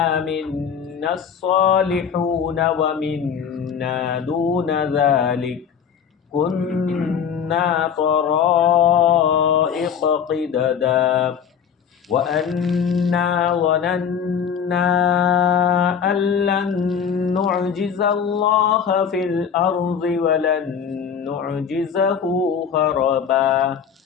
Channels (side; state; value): right; quieter; 7.5 dB